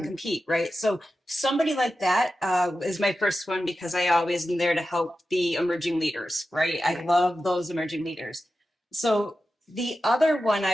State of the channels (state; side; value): normal; both; correlation 0.92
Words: to compete, right? So somebody like that is my first one because I always am there to help the emerging leaders, right? I love those emerging leaders. So the other one